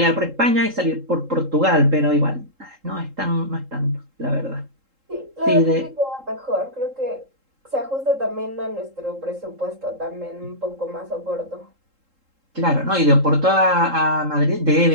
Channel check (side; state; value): left; late; 3.7 ms